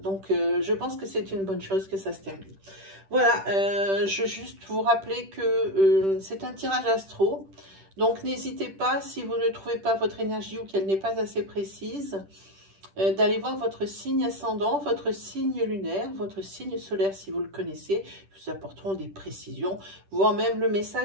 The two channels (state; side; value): late; left; 10 ms